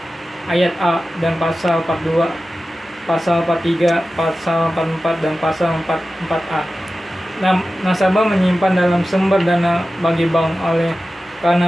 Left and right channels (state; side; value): normal; both; correlation 0.94